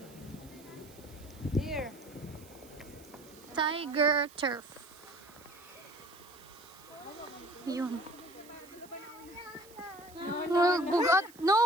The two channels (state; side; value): noise; right; hiss, 22 dB below the sound